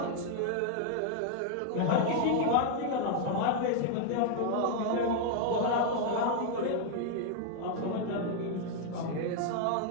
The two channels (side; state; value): both; different; correlation 0.00